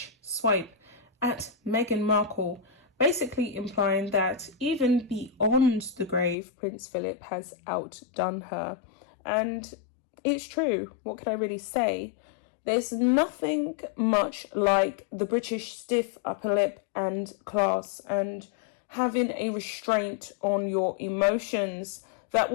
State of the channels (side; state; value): right; drops out; at 6.4 s